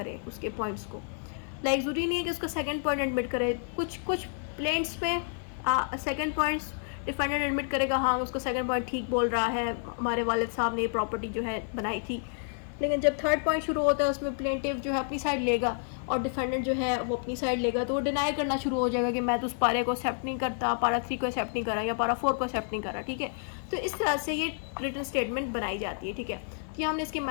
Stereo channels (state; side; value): silent; right; 56 dB below the other